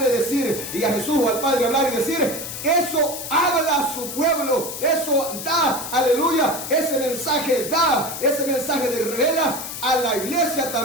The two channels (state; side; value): noise; left; hiss, 7 dB below the sound